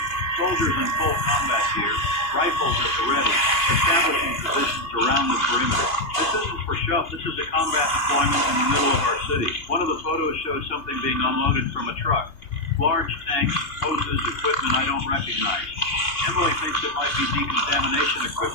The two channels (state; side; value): late; right; 2.8 ms